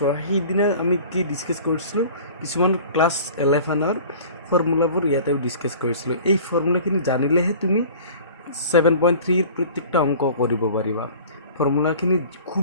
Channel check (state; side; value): inverted; both; correlation -0.44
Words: সেইদিনা আমি কি ডিছকাছ কৰিছিলোঁ কিছুমান ক্লাছ 11ৰ ফৰ্মুলাবোৰ ইয়াতেও ডিছকাছ কৰিছিলোঁ এই ফৰ্মুলাখিনি জানিলেহে তুমি 7.3 প্ৰত্যেকটা অংক কৰিব পাৰিবা ফৰ্মুলাখিনি